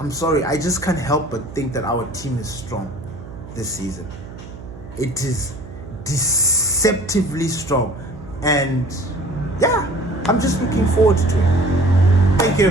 sorry, I just can't help but think that our team is strong this season. It is deceptively strong, and yeah, I'm just looking forward to it. Thank you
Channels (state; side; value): noise; right; hum, 15 dB below the sound